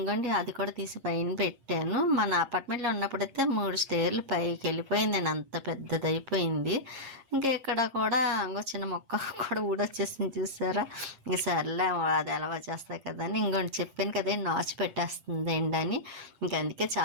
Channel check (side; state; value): left; late; 7.4 ms